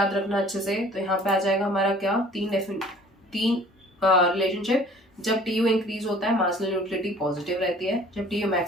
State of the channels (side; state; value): both; normal; correlation 0.52